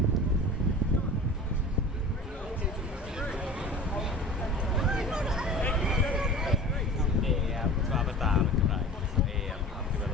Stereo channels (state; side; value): normal; both; correlation 0.39